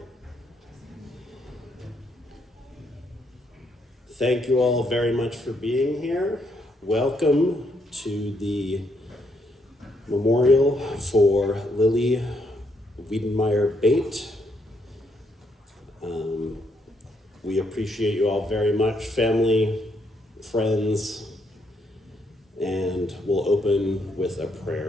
Thank you all very much for being here. Welcome to the memorial for Llili Bayt'S. We appreciate you all very much, family, friends, and we'll open with a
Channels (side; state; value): both; normal; correlation 0.75